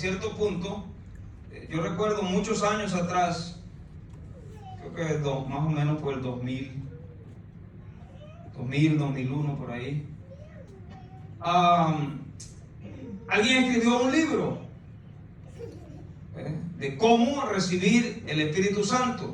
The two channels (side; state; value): both; identical; correlation 1.00